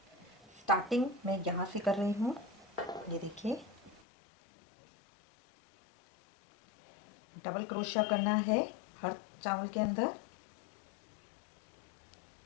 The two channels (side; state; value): right; drops out; at 4.0 s